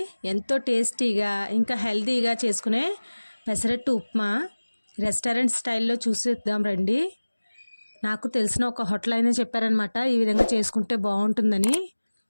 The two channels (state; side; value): inverted; both; correlation -1.00